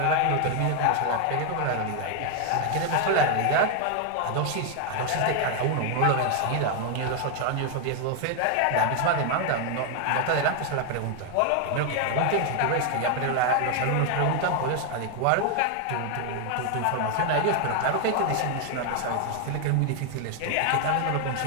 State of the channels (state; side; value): different; both; correlation 0.00